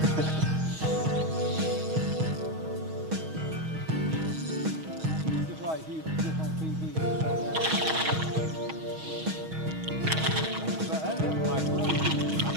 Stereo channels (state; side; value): late; left; 6.3 ms